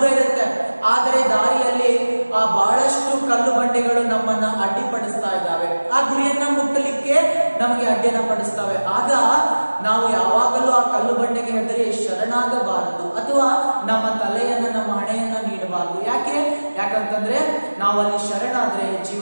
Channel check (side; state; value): both; inverted; correlation -1.00